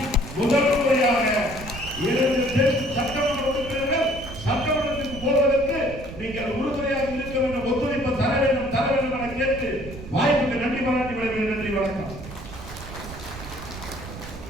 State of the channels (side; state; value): right; noise; rumble, 12 dB below the sound